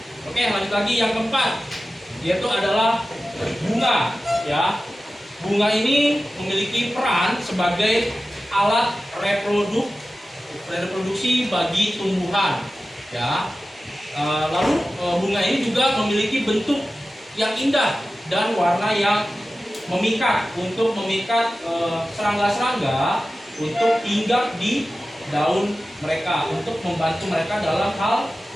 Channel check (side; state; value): both; normal; correlation 0.95